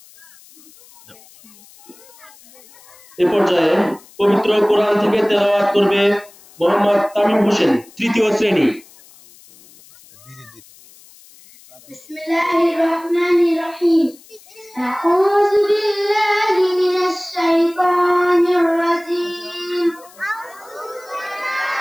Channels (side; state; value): left; noise; hiss, 25 dB below the sound